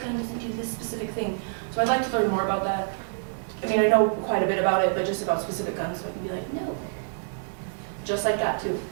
doesn't do this specific thing. So I'd like to learn more about that. I mean, I know quite a bit about it, but just about specific guns, so I can be like, no. Just like that, too.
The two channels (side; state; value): left; silent; digital silence